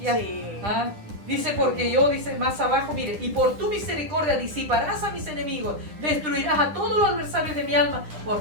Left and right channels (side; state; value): left; late; 9.9 ms